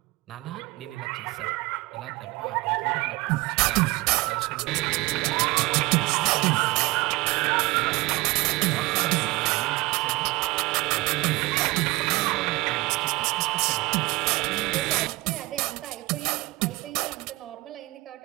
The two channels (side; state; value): left; quieter; 21.9 dB